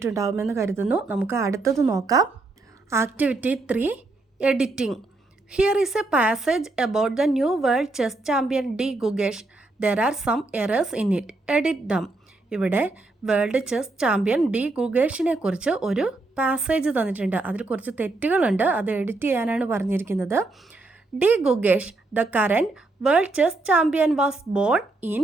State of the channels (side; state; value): left; quieter; 3.1 dB